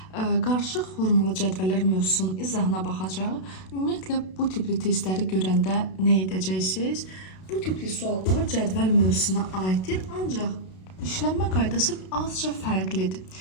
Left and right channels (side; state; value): right; late; 32 ms